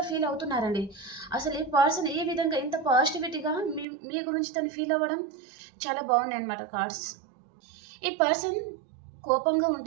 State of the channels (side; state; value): left; drops out; at 3.9 s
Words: ఫీల్ అవుతున్నారండి. అసలు ఈ పర్సన్ ఈ విధంగా ఇంత పాజిటివిటీగా మీ గురించి తను ఫీల్ అవ్వడం చాలా బాగున్నాయి అన్నమాట కార్డ్స్. ఈ పర్సన్ కోపంగా